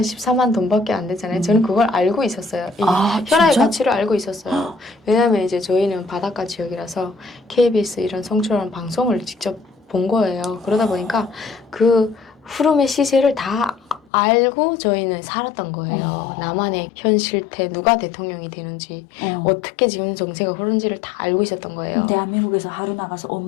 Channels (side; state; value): right; drops out; at 14.1 s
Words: 돈밖에 안 되잖아요. 저는 그걸 알고 있었어요. 이 현아의 가치를 알고 있었어요. 왜냐하면 이제 저희는 바닷가 지역이라서 KBS 이런 성출하는 방송을 직접 본 거예요. 그러다 보니까 그 흐름의 시세를 다 알고 저희는 살았던 거예요. 나만의 현 실태, 누가 대통령이 되는지, 어떻게 지금 정세가 흐르는지를 다 알고 있었던 거예요. 대한민국에서 하루 나가서 온